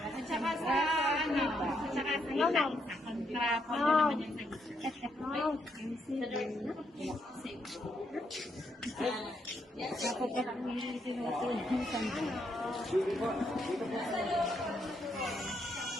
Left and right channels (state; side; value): normal; both; correlation 0.77